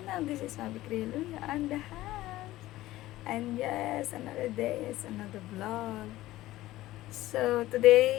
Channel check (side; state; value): right; quieter; 16.3 dB